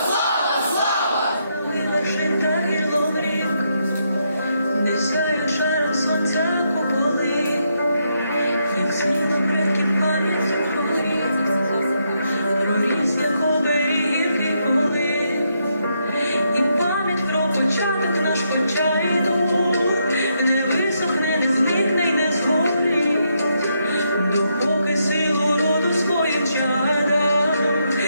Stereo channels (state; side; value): inverted; both; correlation -0.79